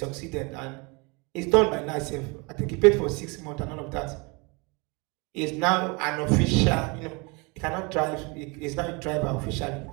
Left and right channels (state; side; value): quieter; left; 28.9 dB